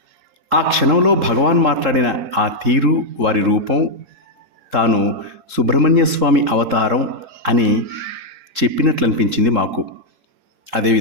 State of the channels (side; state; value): left; late; 3.7 ms